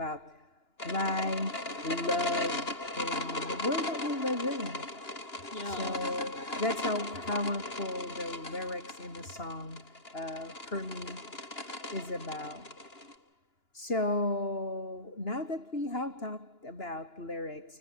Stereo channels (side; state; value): right; late; 2.9 ms